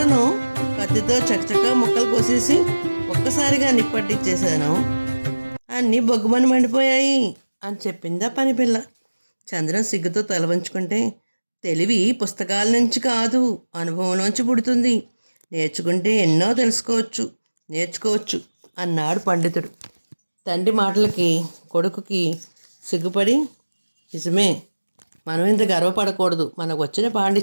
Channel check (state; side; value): inverted; both; correlation -1.00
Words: కత్తితో చకచకా ముక్కలు కోసేసి ఒక్కసారిగా నిప్పట్టించేశాను, అన్నీ బొగ్గుమని మండిపోయాయి అని చెప్పిందా పనిపిల్ల. చంద్రం సిగ్గుతో తల వంచుకుంటే, తెలివి పుస్తకాల నుంచి కాదు అనుభవంలోంచి పుడుతుంది, నేర్చుకుంటే ఎన్నో నేర్చుకోవచ్చు అన్నాడు పండితుడు. తండ్రి మాటలకి కొడుకుకి సిగ్గుపడి, నిజమే, మనం ఇంత గర్వపడకూడదు, మనకు వచ్చిన